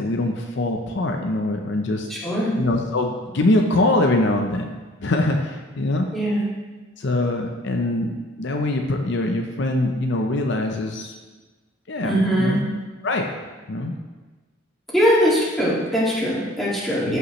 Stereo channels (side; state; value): both; normal; correlation 0.54